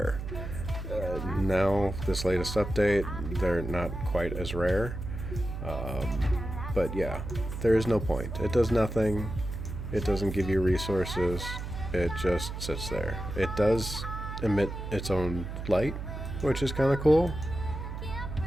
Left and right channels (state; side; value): noise; right; hum, 7 dB below the sound